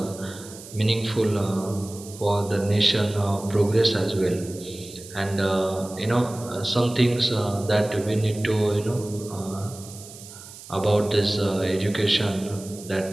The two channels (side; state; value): right; noise; hiss, 16 dB below the sound